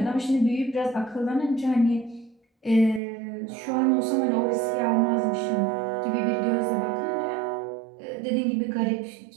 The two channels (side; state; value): left; drops out; at 3.0 s